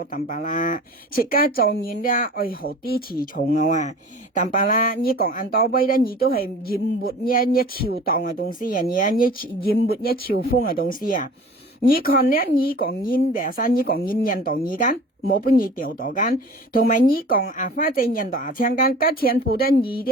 淡白啦，切家做人咧愛好啲詞重啊，淡白啦，你講按多威咧。你都係淹沒一潮蕩嘅東西啊！你淹沒一潮風嘅東西啊！你看咧，你講煙白山，你講煙印度二間，冇俾你掉到間，同埋你講啊花仔印度啊青間，加全部都你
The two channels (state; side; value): normal; both; correlation 0.42